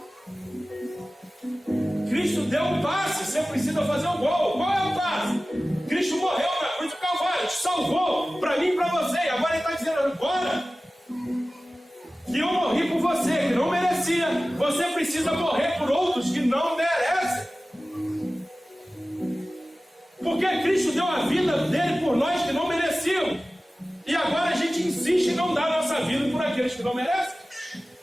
Cristo deu um passe, você precisa fazer um gol. Qual é o passe? Cristo morreu na cruz do Calvário, te salvou para mim e para você. E agora ele está dizendo: agora que eu morri por você, que não merecia, você precisa morrer por outros que não merecem. Porque Cristo deu a vida dele por nós que não mereciam. E agora a gente insiste em não dar a nossa vida por aqueles que não merecem.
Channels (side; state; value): both; normal; correlation 0.96